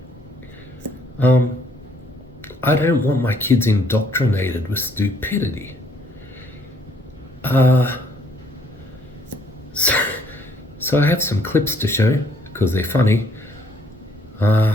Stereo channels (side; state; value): both; normal; correlation 0.65